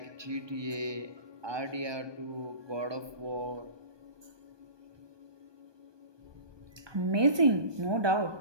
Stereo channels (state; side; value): late; left; 1.2 ms